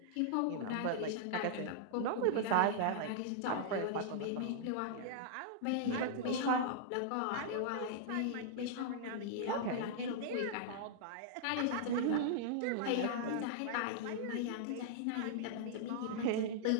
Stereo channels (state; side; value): different; both; correlation -0.01